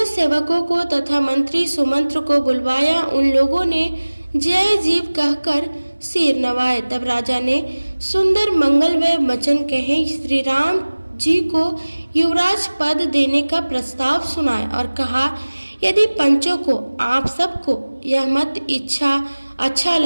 सेवकों को तथा मंत्री सुमंत्र को बुलवाया। उन लोगों ने जय जीव कहकर सिर नवाए। तब राजा ने सुंदर मंगलमय वचन कहे, श्री राम जी को युवराज पद देने का प्रस्ताव सुनाए और कहा, यदि पंचों को, आप सबको यह मत इच्छा अच्छा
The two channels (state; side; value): inverted; both; correlation -1.00